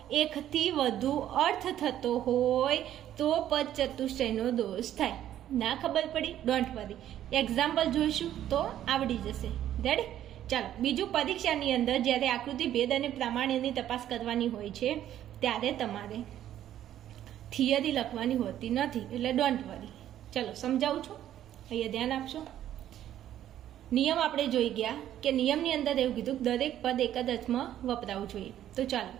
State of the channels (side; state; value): left; quieter; 11.6 dB